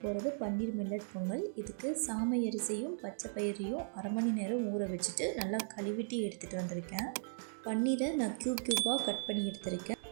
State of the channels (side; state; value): left; silent; digital silence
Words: போகிறது பன்னீர் மில்லட் பொங்கல். இதுக்கு சாமை அரிசியும் பச்சை பயிரையும் அரை மணி நேரம் ஊற வச்சுட்டு நல்லா கழுவிட்டு எடுத்துகிட்டு வந்திருக்கேன். பன்னீரை நான் க்யூபாக கட் பண்ணி எடுத்திருக்கேன்.